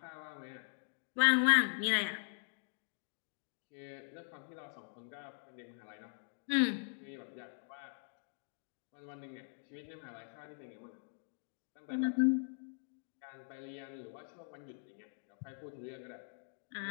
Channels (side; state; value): right; silent; digital silence